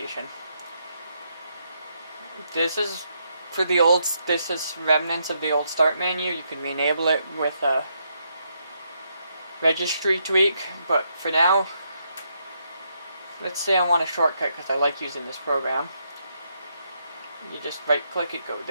This is for the old, this is remnants of the old start menu. You can re-enable it with a registry tweak, but for now, let's say I want a shortcut because I like using this program. You just right click it, go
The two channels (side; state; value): both; inverted; correlation -0.78